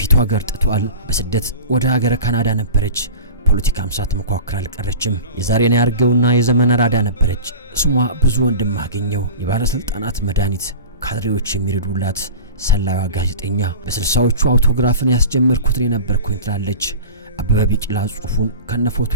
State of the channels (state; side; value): inverted; both; correlation -0.34